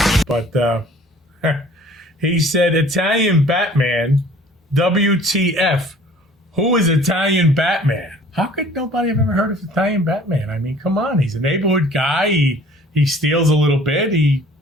But he said, Italian Batman, WTF. Who is Italian Batman? How could nobody have ever heard of Italian Batman? I mean, come on. He's a neighborhood guy. He steals a little bit. He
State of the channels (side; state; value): both; normal; correlation 0.51